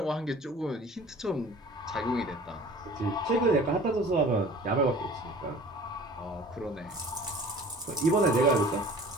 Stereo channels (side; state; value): both; normal; correlation 0.45